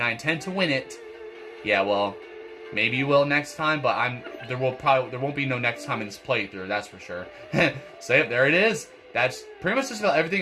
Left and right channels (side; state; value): both; identical; correlation 1.00